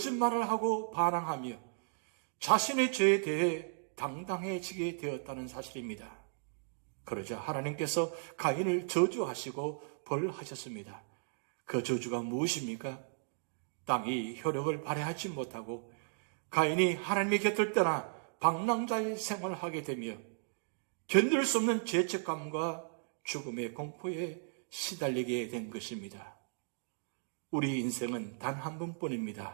하고 반항하며 자신의 죄에 대해 당당해지게 되었다는 사실입니다. 그러자 하나님께서 가인을 저주하시고 벌하셨습니다. 그 저주가 무엇입니까? 땅이 효력을 발휘하지 못하고 가인이 하나님의 곁을 떠나 방랑자의 생활을 하게 되며 견딜 수 없는 죄책감과 죽음의 공포에 시달리게 된 것입니다. 우리 인생은 단 한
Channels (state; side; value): silent; left; digital silence